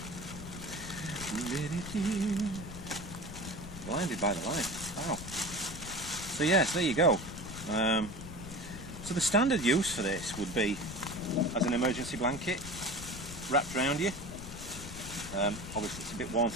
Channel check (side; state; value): left; noise; rumble, 12 dB below the sound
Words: Blinded by the light. Wow. So yes, there you go. So the standard use for this would be as an emergency blanket wrapped around you. Obviously it's a bit warm